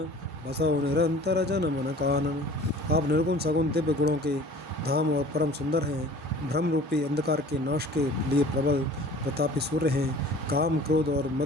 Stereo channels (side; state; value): both; normal; correlation 0.46